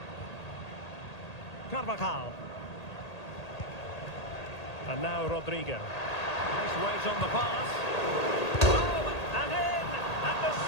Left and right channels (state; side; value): late; right; 1.8 ms